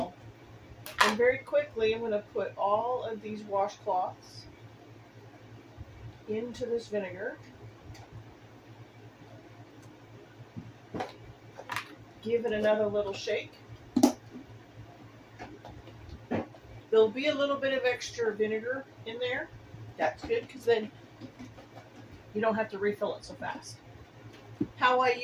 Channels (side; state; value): both; identical; correlation 1.00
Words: And very quickly, I'm going to put all of these washcloths into this vinegar. Give it another little shake. There'll be a little bit of extra vinegar in there. That's good because then you don't have to refill it so fast. How I